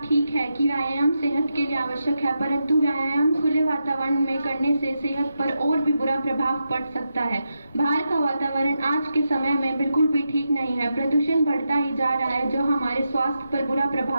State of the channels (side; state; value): both; inverted; correlation -0.87